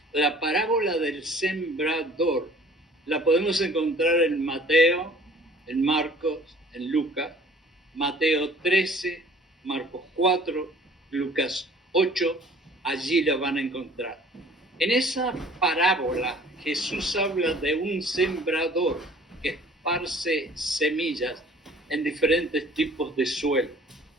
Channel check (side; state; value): both; normal; correlation 0.52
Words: La parábola del sembrador la podemos encontrar en Mateo, en Marcos, en Lucas, Mateo 13, Marcos 4, Lucas 8, allí la van a encontrar. En esa parábola Jesús habla de un sembrador que esparce semillas en diferentes tipos de suelo.